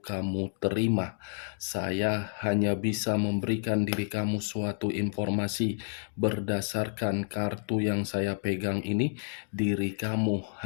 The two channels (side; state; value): right; silent; digital silence